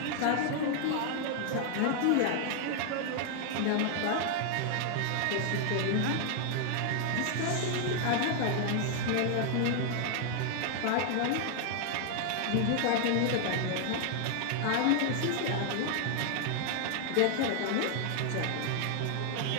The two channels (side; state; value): both; different; correlation 0.00